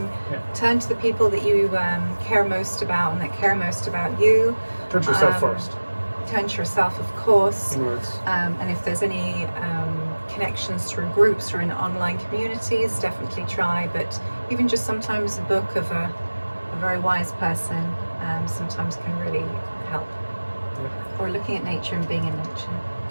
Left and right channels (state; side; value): inverted; both; correlation -1.00